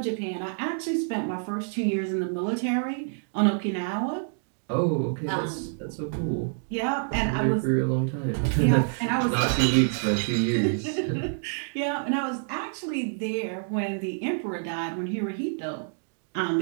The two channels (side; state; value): left; silent; digital silence